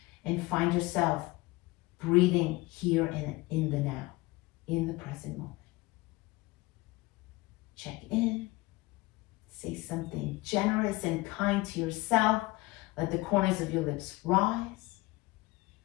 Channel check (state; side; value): quieter; right; 21.3 dB